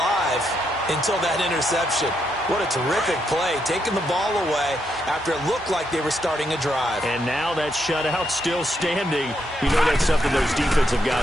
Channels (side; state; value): both; normal; correlation 0.79